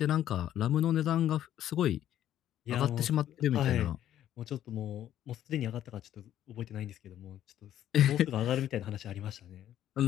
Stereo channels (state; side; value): quieter; right; 11.6 dB